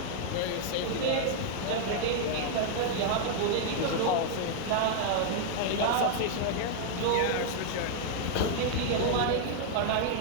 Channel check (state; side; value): different; both; correlation 0.00